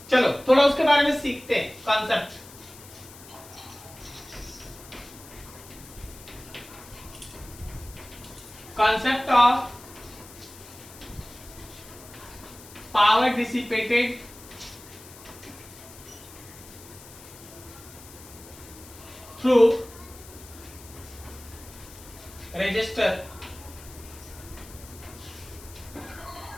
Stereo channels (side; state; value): left; noise; hiss, 18 dB below the sound